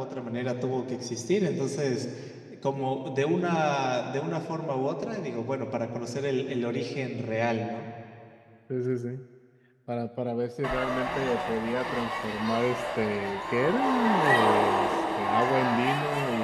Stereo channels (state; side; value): identical; both; correlation 1.00